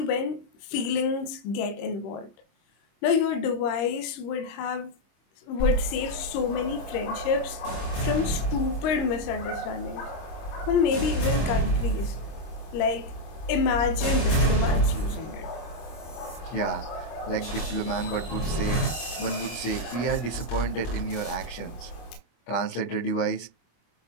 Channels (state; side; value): late; right; 25 ms